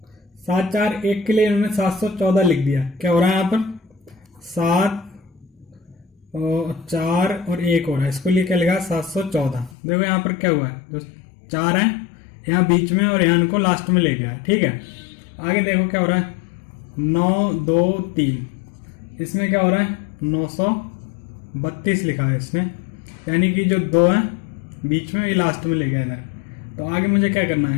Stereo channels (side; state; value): right; drops out; at 9.8 s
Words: 1 के लिए इन्होंने 714 लिख दिया। क्या हो रहा है यहाँ पर 7 और 4 और 1 हो रहा है, इसको लिए क्या लिखा 714। देखो यहाँ पर क्या हुआ है, जो 4 है यहाँ बीच में और यहाँ इनको लास्ट में ले गया। ठीक है, आगे देखो क्या हो रहा है 9 2 3, इसमें क्या हो रहा है 932 लिखा है इसमें, यानी कि जो 2 है बीच में ये लास्ट में ले गया इधर। तो आगे मुझे क्या करना है,